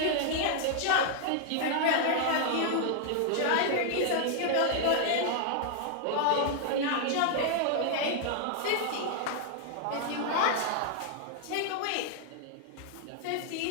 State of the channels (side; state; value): both; different; correlation 0.00